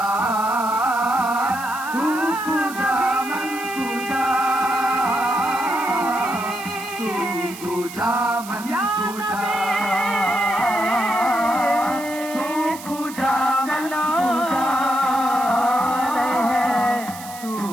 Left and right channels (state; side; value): noise; right; hiss, 15 dB below the sound